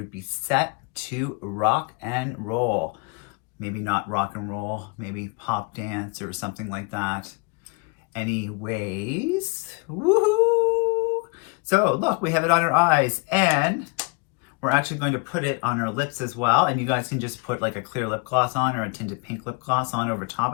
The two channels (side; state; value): right; quieter; 31.9 dB